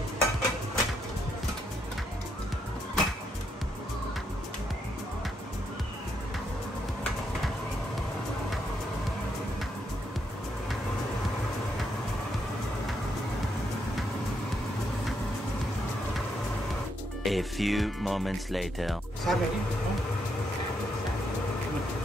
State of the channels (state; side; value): normal; both; correlation 0.78